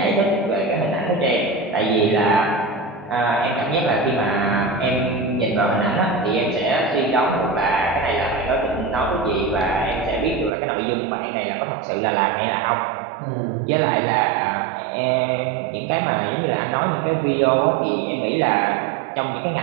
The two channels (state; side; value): drops out; left; at 10.5 s